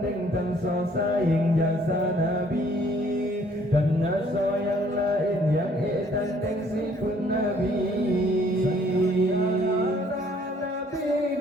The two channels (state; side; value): normal; both; correlation 0.61